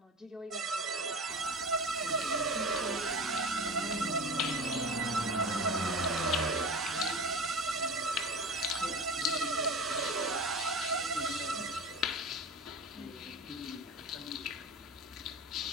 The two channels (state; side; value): normal; both; correlation 0.32